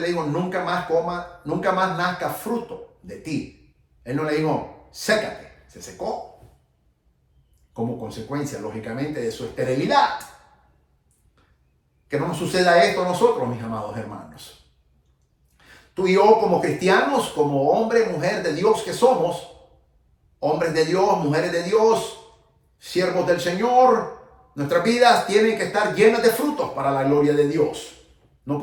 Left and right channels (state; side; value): identical; both; correlation 1.00